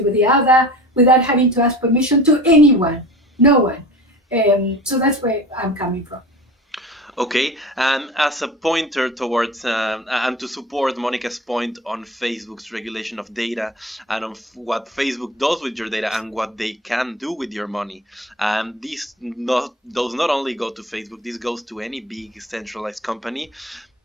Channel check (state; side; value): normal; both; correlation 0.37